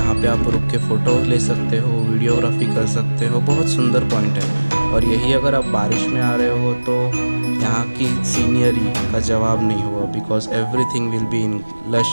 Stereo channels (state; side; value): inverted; both; correlation -1.00